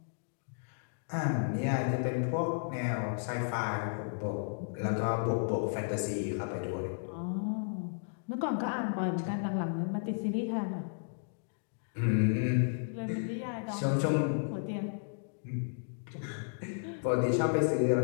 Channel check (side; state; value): right; silent; digital silence